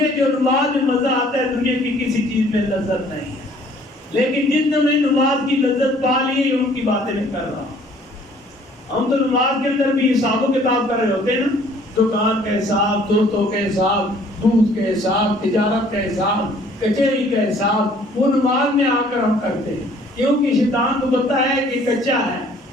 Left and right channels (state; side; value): normal; both; correlation 0.57